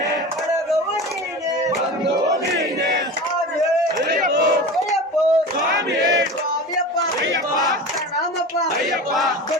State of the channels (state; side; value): normal; both; correlation 0.31